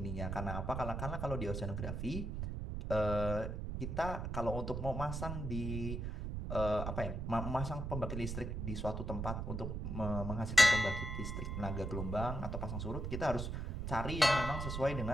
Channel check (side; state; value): right; noise; rumble, 3 dB below the sound